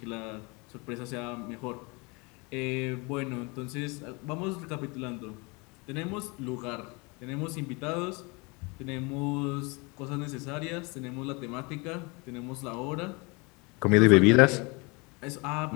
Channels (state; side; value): quieter; right; 28.5 dB